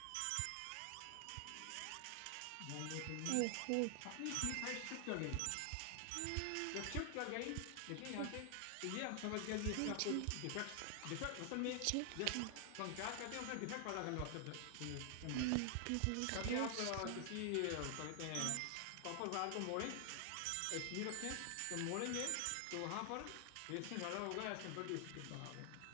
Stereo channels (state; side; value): different; both; correlation 0.00